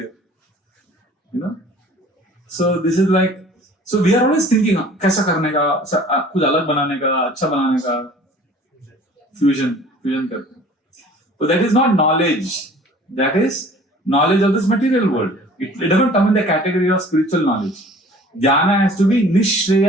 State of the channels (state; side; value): normal; both; correlation 0.49